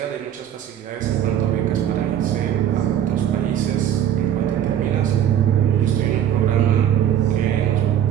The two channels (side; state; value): left; quieter; 10.3 dB